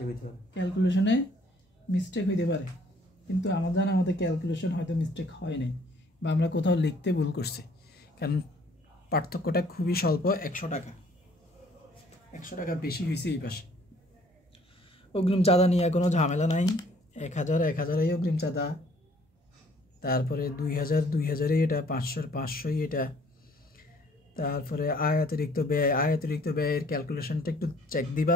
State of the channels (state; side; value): normal; both; correlation 0.59